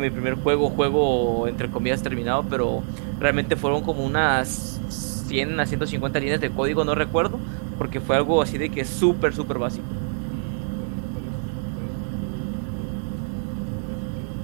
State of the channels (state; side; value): silent; left; digital silence